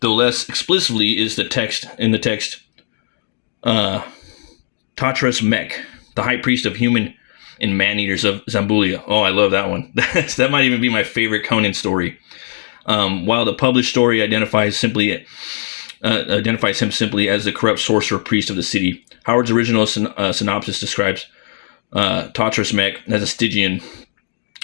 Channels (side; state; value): right; silent; digital silence